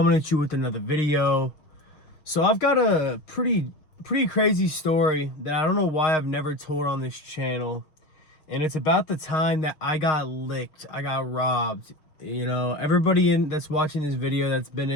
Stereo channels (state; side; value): late; right; 6.4 ms